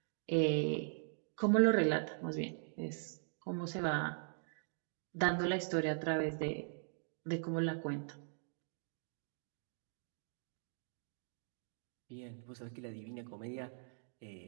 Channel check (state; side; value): silent; left; digital silence